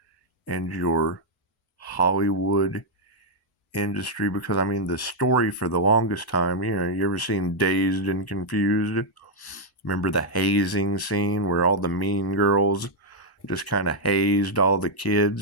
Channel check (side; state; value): both; normal; correlation -0.03